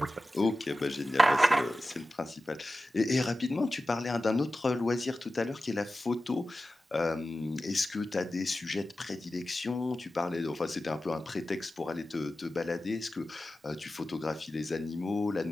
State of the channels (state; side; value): normal; both; correlation 0.94